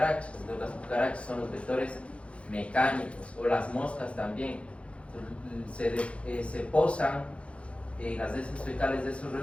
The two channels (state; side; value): late; right; 0.061 ms